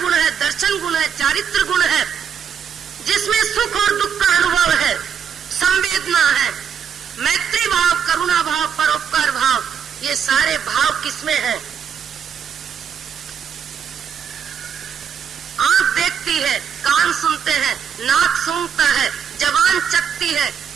है, दर्शन गुण है, चारित्र गुण है, जिसमें सुख और दुख का अनुभव है, संवेदना है, मैत्री भाव, करुणा भाव, परोपकार भाव, ये सारे भाव किसमें है? आंख देखती है, कान सुनते हैं, नाक सूंघता है, जबान चखती है,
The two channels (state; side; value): quieter; left; 7.6 dB